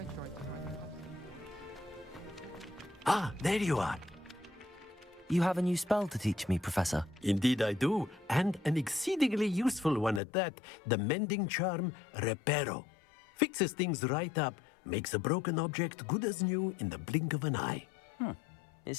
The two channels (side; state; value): right; drops out; at 10.2 s